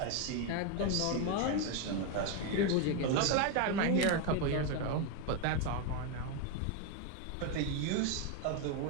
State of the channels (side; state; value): both; different; correlation 0.02